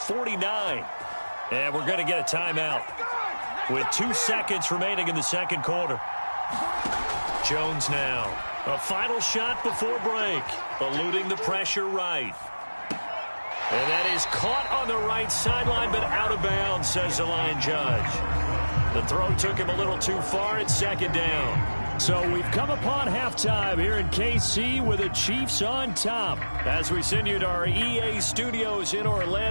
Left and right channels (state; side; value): inverted; both; correlation -1.00